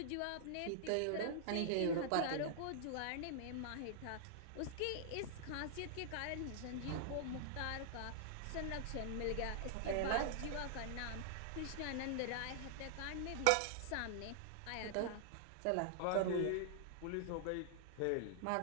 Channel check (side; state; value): both; different; correlation -0.01